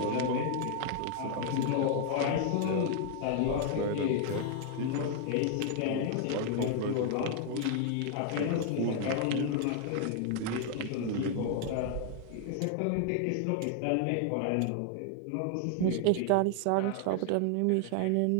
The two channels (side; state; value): both; different; correlation 0.00